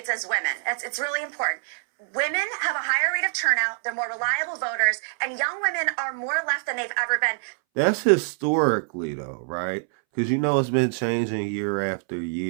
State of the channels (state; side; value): silent; left; 62 dB below the other